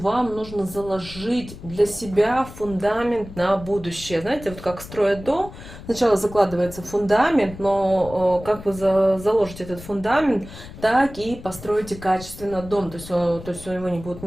нужно заложить для себя фундамент на будущее. Знаете, вот как строят дом, сначала закладывается фундамент, но как вы заложите этот фундамент, так и построите качественно дом. То есть его не будут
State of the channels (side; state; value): left; noise; rumble, 15 dB below the sound